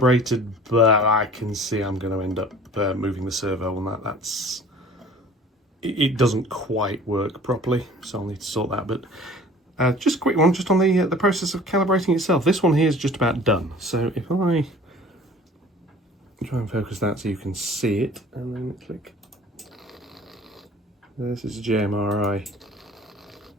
but I can see I'm going to end up moving the servo on that. It doesn't quite work properly, so I'll need to sort that. But just a quick one, just on the process of calibrating itself. This one here is just about done. So if I try and focus that so you can see it, and then click. This is a JMRI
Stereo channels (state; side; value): normal; both; correlation 0.47